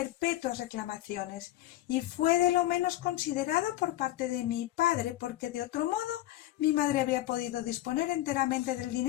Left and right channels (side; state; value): right; quieter; 15.2 dB